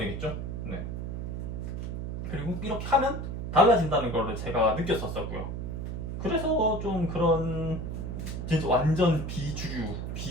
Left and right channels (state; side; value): noise; right; hum, 4 dB below the sound